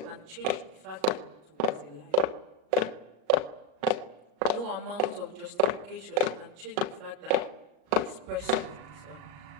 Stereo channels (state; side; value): late; left; 38 ms